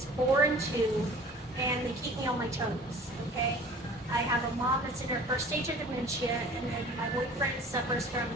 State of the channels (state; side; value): normal; both; correlation 0.46